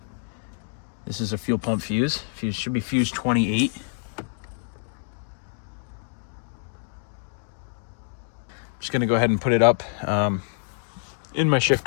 This is a fuel pump fuse. Fuse should be fuse 28. Just gonna go ahead and put it up in my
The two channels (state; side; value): silent; right; digital silence